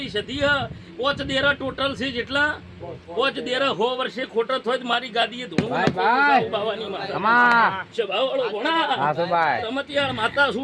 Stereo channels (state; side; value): identical; both; correlation 1.00